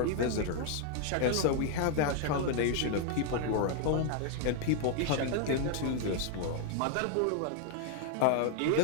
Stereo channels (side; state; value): both; different; correlation 0.00